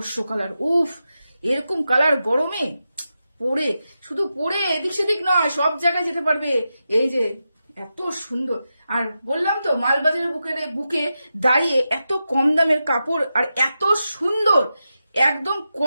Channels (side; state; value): both; inverted; correlation -0.90